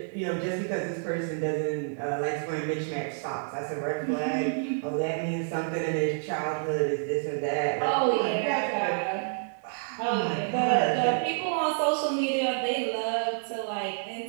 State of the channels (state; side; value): silent; left; digital silence